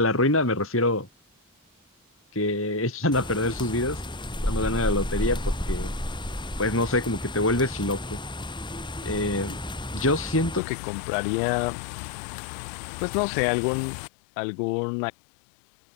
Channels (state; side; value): drops out; right; at 10.6 s